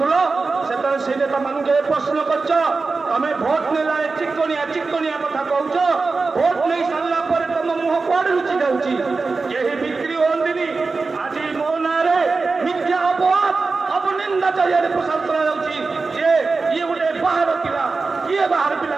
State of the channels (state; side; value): quieter; left; 4.1 dB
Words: ସେତେବେଳେ ସେଇ ନେତାମାନଙ୍କୁ କେବେ ପ୍ରଶ୍ନ କରିଛ? ତମେ ଭୋଟ ନେଲା ଚିକଣିଆ ଚିକଣିଆ କଥା କହୁଛ, ଭୋଟ ନେଇ ସାରିଲା ପରେ ତମ ମୁହଁ କୁଆଡେ ଲୁଚି ଯାଉଛି? କେହି ବିକ୍ରି ହୁଅନ୍ତିନି। ଆଜି ମୋ ନାଁରେ ମିଥ୍ୟା ଅପବାଦ, ଅପନିନ୍ଦା ଚାରିଆଡ଼େ ପ୍ରସାର କରାଯାଉଛି ଯେ ଇଏ ଗୋଟେ ବାହାର ପିଲା। କିଏ ବାହାର ପିଲା?